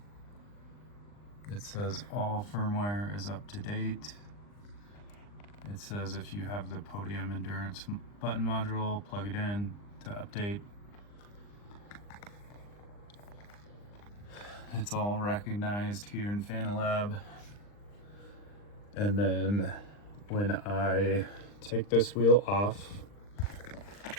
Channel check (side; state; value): right; late; 39 ms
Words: It says all firmware is up to date. It says if you have the Podium Endurance button module, plug it in to update. It's all recognized here in Fanalab. And then when I take this wheel off,